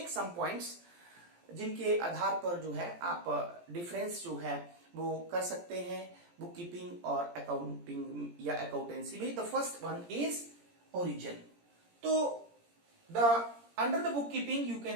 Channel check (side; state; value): left; late; 17 ms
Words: some points जिनके आधार पर जो है आप डिफरेंस जो है वो कर सकते हैं बुक कीपिंग और अकाउंटिंग या अकाउंटेंसी में। The first one is origin. तो the under the book keeping you